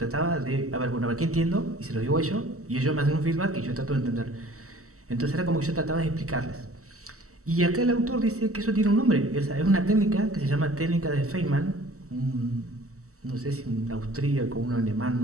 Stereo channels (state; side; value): late; left; 0.65 ms